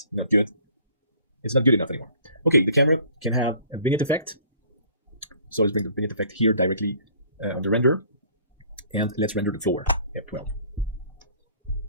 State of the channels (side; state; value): both; inverted; correlation -0.54